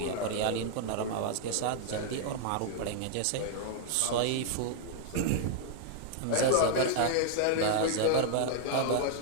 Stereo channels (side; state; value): both; different; correlation -0.01